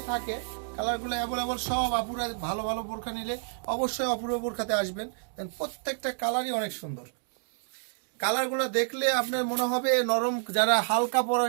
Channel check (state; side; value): silent; left; digital silence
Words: থাকে। কালারগুলো অ্যাভেলেবল, সব আপুরা ভালো ভালো বোরখা নিলে অবশ্যই অপূর্ব বোরখাতে আসবেন। প্রত্যেকটা কালারই অনেক সুন্দর। কালারগুলো দেখলে আপনার মনে হবে নরম। যারা হালকা